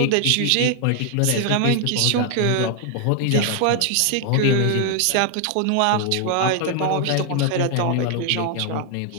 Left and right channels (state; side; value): different; both; correlation 0.00